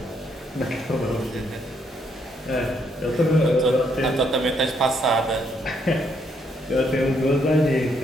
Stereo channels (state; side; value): normal; both; correlation 0.73